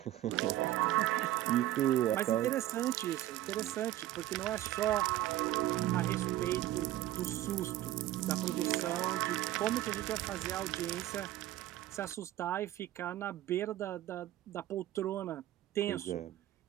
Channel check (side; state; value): left; quieter; 14.2 dB